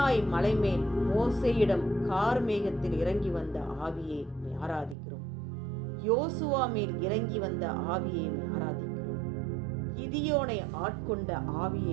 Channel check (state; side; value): drops out; left; at 5.0 s